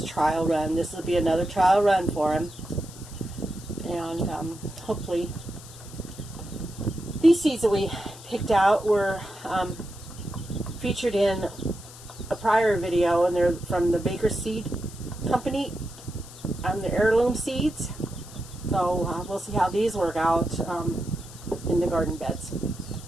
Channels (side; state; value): left; noise; hiss, 18 dB below the sound